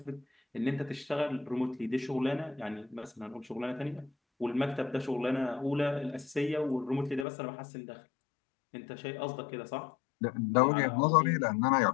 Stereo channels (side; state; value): right; drops out; at 7.2 s